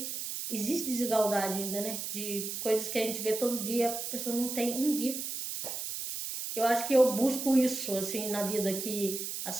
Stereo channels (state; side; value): noise; right; hiss, 5 dB below the sound